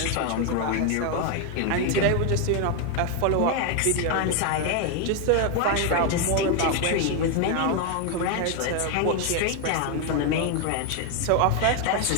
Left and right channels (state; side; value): different; both; correlation 0.01